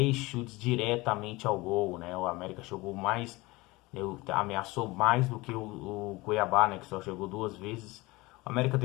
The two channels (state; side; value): quieter; right; 22.0 dB